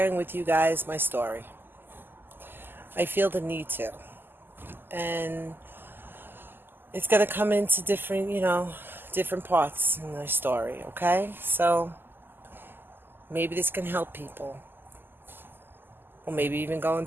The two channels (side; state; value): left; late; 0.095 ms